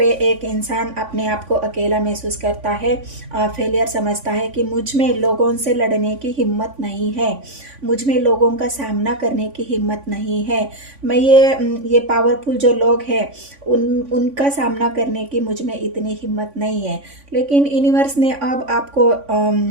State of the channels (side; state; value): left; late; 3.5 ms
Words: एक इंसान अपने आप को अकेला महसूस करता है, फेलियर समझता है कि मुझ में लोगों से लड़ने की हिम्मत नहीं है, मुझ में लोगों का सामना करने की हिम्मत नहीं है, मैं ये पावरफुल जो लोग हैं उनका सामना करने की मुझ में इतनी हिम्मत नहीं है। लेकिन यूनिवर्स ने अब आपको